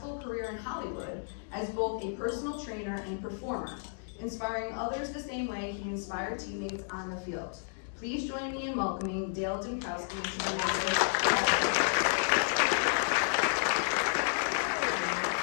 career in Hollywood as both a personal trainer and performer, inspiring others the same way he inspired teammates on the field. Please join me in welcoming Dale Dymkoski to the Masuk.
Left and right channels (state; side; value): silent; right; digital silence